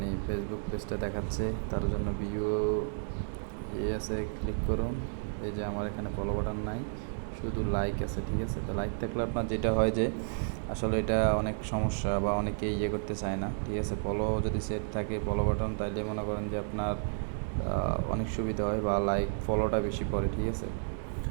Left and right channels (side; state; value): left; silent; digital silence